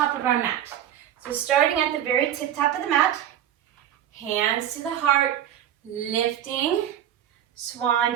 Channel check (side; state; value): left; quieter; 10.9 dB